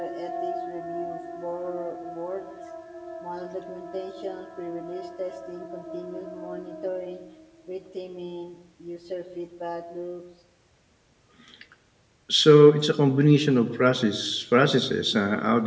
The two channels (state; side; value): identical; both; correlation 1.00